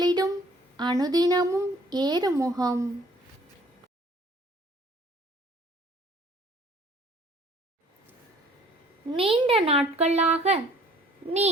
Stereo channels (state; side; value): normal; both; correlation 0.56